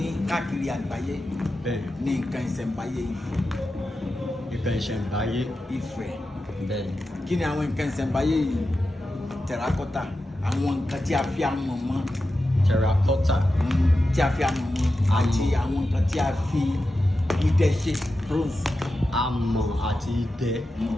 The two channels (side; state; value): both; normal; correlation 0.91